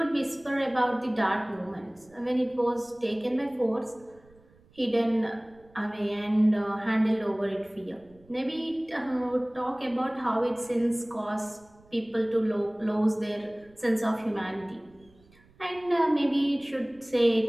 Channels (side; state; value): right; noise; rumble, 29 dB below the sound